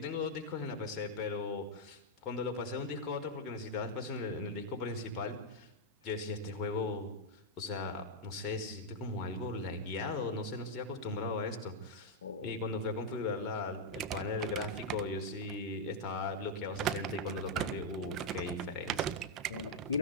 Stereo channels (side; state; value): both; normal; correlation -0.01